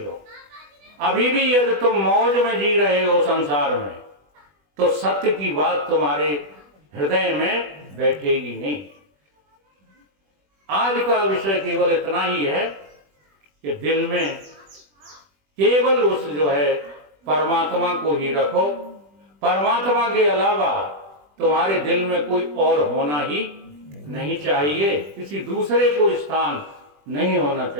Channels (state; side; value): late; left; 20 ms